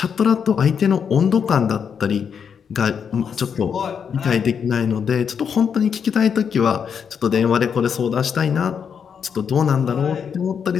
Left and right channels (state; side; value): quieter; right; 7.1 dB